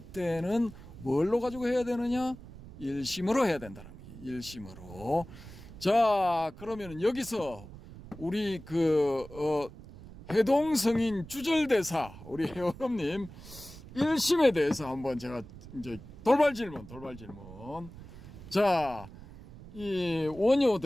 뭘로 가지고 해야 되느냐? 일심으로 해야 된다는 거예요. 일심으로. 자, 그러면은 여기서 우리 해동성인 주절대사 우리 회원님 일심에 대해서 한번 제가 이제 돌발 질문. 자, 이 원효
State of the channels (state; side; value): noise; right; rumble, 16 dB below the sound